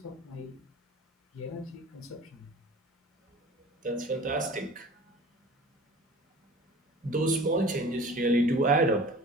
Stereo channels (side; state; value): both; normal; correlation 0.42